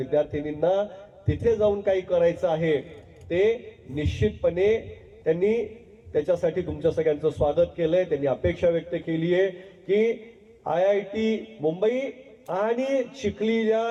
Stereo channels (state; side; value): identical; both; correlation 1.00